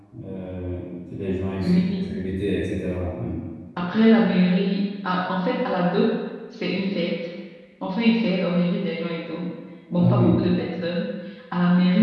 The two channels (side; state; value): both; identical; correlation 1.00